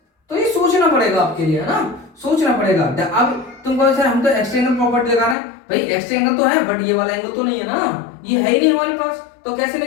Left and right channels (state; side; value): drops out; right; at 5.4 s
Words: तो ये सोचना पड़ेगा आपके लिए, है ना, सोचना पड़ेगा। अब तुम कहो सर हम तो एक्स ट्रायंगल प्रॉपर्टी लगा रहे हैं, भाई एक्स ट्रायंगल तो है बट ये वाला एंगल तो नहीं है ना, ये है ही नहीं हमारे पास, तो कैसे